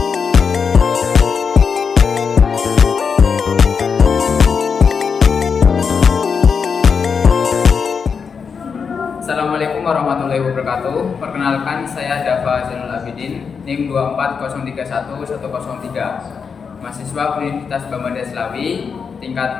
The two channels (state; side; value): quieter; right; 6.0 dB